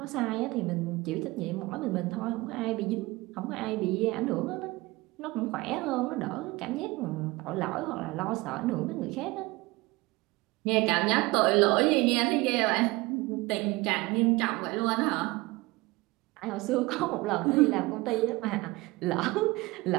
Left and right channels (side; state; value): left; quieter; 22.0 dB